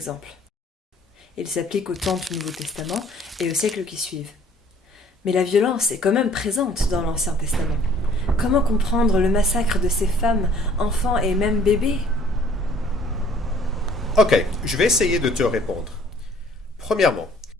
Il s'applique au temps du Nouveau Testament et aux siècles qui suivent. Mais la violence est quand même présente dans l'Ancien Testament. Comment comprendre le massacre de ces femmes, enfants et même bébés? Ok, je vais essayer de te répondre. Premièrement,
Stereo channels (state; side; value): normal; both; correlation 0.56